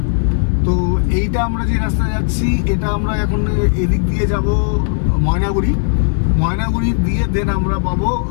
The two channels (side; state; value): right; silent; digital silence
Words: তো এইটা আমরা যে রাস্তায় যাচ্ছি, এটা আমরা এখন এদিক দিয়ে যাব ময়নাগুড়ি, ময়নাগুড়ি দিয়ে দেন আমরা পাবো